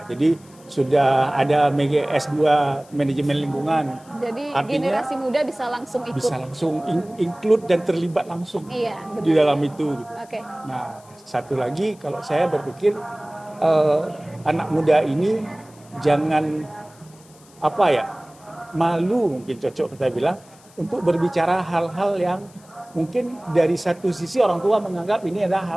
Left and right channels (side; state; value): left; noise; hiss, 26 dB below the sound